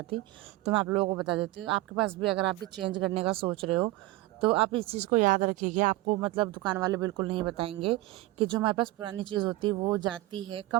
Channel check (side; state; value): left; quieter; 18.3 dB